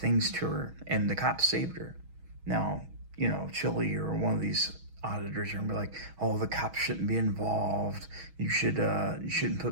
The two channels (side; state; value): left; late; 6.3 ms